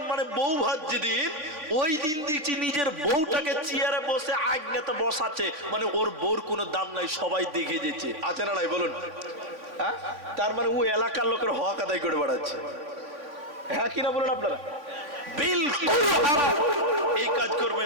মানে বউ ভাত যেদিন, ওই দিন দেখছি নিজের বউটাকে চেয়ারে বসে আগ্নেতে বসাচ্ছে, মানে ওর বউর কোনো দাম নাই, সবাই দেখে যেছে। আছে না নাই বলুন? হ্যাঁ, তার মানে ও এলাকার লোকের হক আদায় করে বেড়াচ্ছে। হ্যাঁ কিনা বলুন আপনারা? বিলকুল হারাম, এই কাজ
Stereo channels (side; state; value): left; late; 3.4 ms